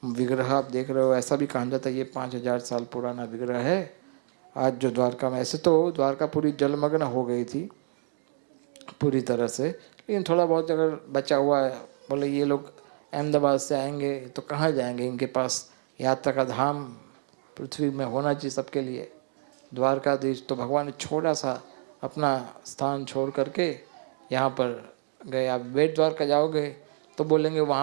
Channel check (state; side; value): silent; left; digital silence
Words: विग्रह आप देख रहे हो, ऐसा भी कहा जाता है ये 5000 साल पुराना विग्रह है। आज जो द्वारका में, ऐसे तो द्वारका पूरी जलमग्न हो गई थी पूरी तरह से, लेकिन थोड़ा बहुत अगर बचा हुआ है, बोले ये लोग अहमदाबाद से आएंगे तो कहाँ जाएंगे, इनके पास यात्रा का धाम पृथ्वी में होना चाहिए सबके लिए। द्वारकाधीश तो भगवान ने छोटा सा अपना स्थान छोड़ करके यहाँ पर गए। आप बेट द्वारका जाओगे तो बोलेंगे,